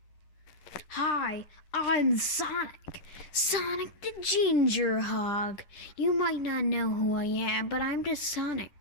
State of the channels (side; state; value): right; late; 10 ms